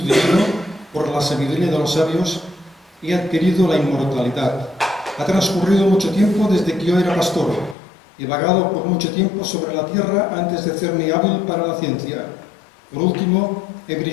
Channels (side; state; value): right; drops out; at 7.8 s